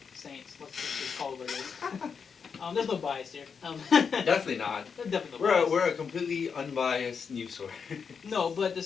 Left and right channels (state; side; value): quieter; right; 6.1 dB